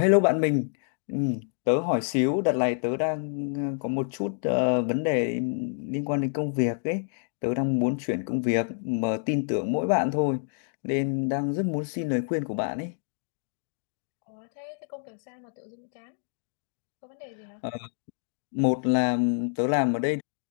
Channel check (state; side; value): silent; right; digital silence